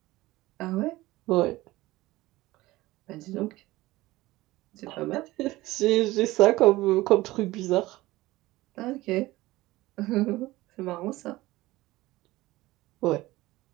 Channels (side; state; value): left; quieter; 18.5 dB